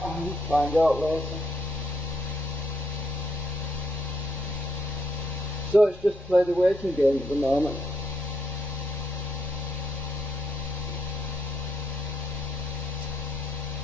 I'll find out later. So it's just play the waiting game at the moment.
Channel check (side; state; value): both; normal; correlation 0.77